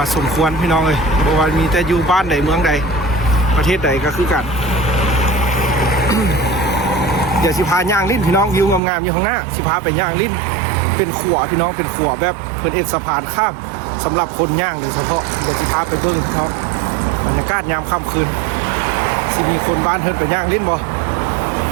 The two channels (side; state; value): left; drops out; at 8.8 s